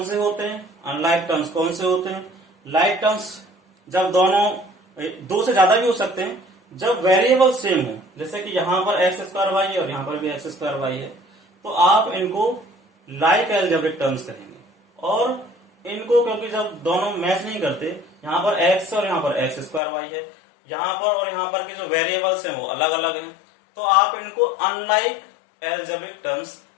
से होते हैं, अनलाइक टर्म्स कौन से होते हैं। लाइक टर्म्स जब दोनों दो से ज्यादा भी हो सकते हैं, जब वेरिएबल सेम हो, जैसे कि यहाँ पर x² वाई है और यहाँ पर भी x² वाई है, तो आप इनको लाइक एल्जेब्रिक टर्म्स कहेंगे। और इनको क्योंकि जब दोनों मैच नहीं करते, यहाँ पर x और यहाँ पर x² वाई है, यहाँ पर और यहाँ पर के जो वेरिएबल्स हैं वो अलग अलग हैं, तो आप इनको अनलाइक एल्जेब्रिक टर्म्स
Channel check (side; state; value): right; drops out; at 19.8 s